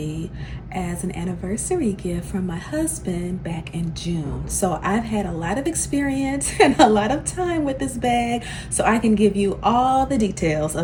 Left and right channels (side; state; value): both; identical; correlation 1.00